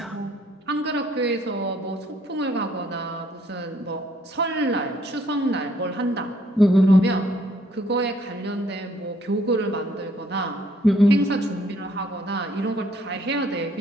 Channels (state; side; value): normal; both; correlation 0.65